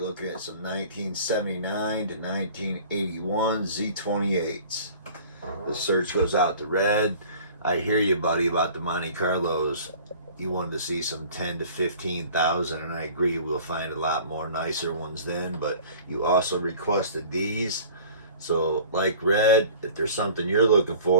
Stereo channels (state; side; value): inverted; both; correlation -0.46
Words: at some 1979 to 1981 Z28's. The search goes out to Red. I hear you, buddy, about the Monte Carlos. You wanted to see some 10 to 15,000, and I agree we'll find a lot more nicer ones then, but you also requested these. So, like Red, if there's something you're looking